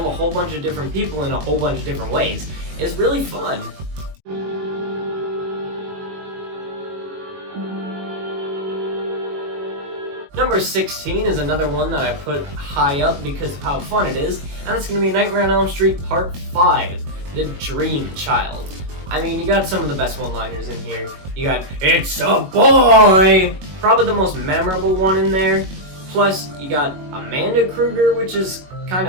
a whole bunch of different people in a whole bunch of different ways is really fun. Number 16 is another one that I put high up because of how fun it is, and it's going to be Nightmare on Elm Street Part 5, The Dream Child. I mean, you got some of the best one-liners in here. You got, "It's a boy!" Probably the most memorable one in there. Plus, you got Amanda Krueger, which is kind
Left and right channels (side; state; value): left; late; 21 ms